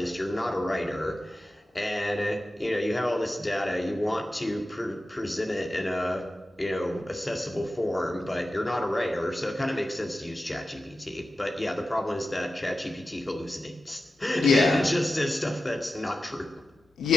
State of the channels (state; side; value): normal; both; correlation 0.92